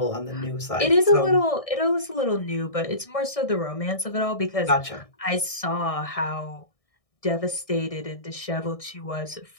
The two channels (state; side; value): late; right; 1.6 ms